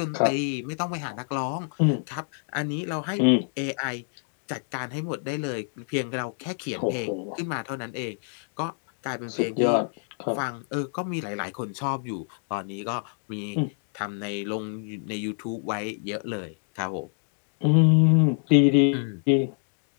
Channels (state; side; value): silent; right; digital silence